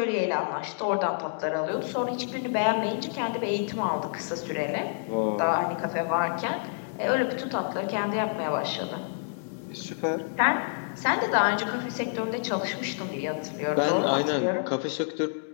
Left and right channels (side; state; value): right; silent; 59 dB below the other